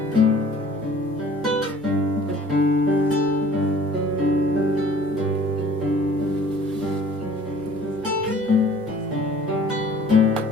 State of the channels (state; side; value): normal; both; correlation 0.51